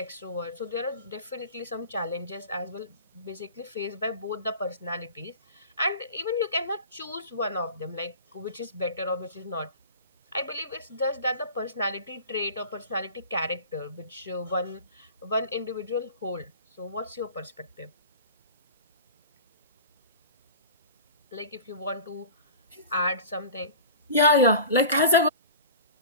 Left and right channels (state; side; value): inverted; both; correlation -0.37